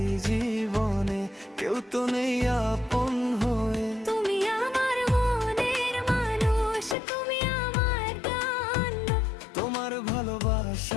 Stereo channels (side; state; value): right; drops out; at 7.0 s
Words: জীবনে কেউ তো নেই আপন হয়ে। তুমি আমার মনের মানুষ, তুমি আমার গান। তোমার